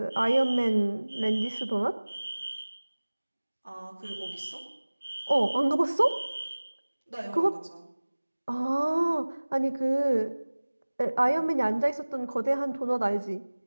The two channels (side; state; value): both; inverted; correlation -1.00